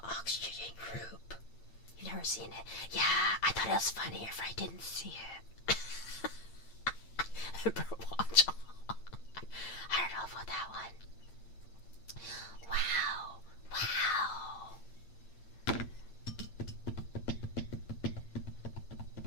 Oxygen Group. You've never seen it? Yeah, I thought it was funnier if I didn't see it. Watch. I don't know about that one. Wow.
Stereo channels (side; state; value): right; late; 8.8 ms